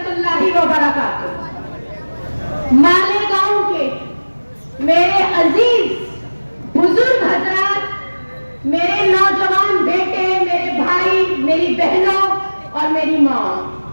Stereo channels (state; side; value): inverted; both; correlation -1.00